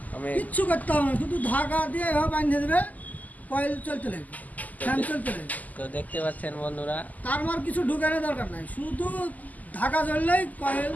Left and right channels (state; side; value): late; right; 0.079 ms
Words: আমি কিচ্ছু করতে হবে না, শুধু ধাগা দিয়ে এভাবে বাঁধে দেবে, কয়েল চলতে লাগবে, ফ্যান চলতে লাগবে। তো দেখতে পাচ্ছেন বন্ধুরা, তার মার কিছু ঢুকানোর দরকার নাই, শুধু ধাগা জ্বললেই কয়েল